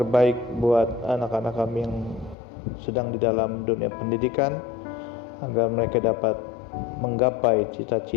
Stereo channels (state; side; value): drops out; right; at 2.4 s